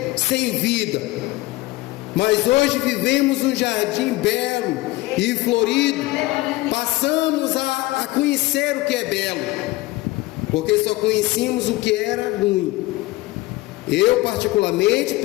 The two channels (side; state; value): right; quieter; 19.4 dB